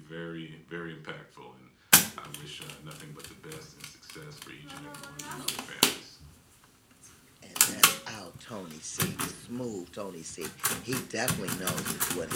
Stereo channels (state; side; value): identical; both; correlation 1.00